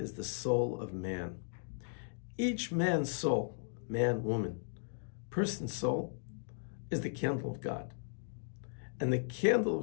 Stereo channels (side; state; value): right; silent; digital silence